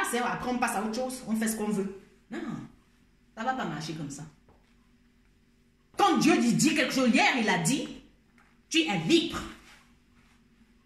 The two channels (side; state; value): both; identical; correlation 1.00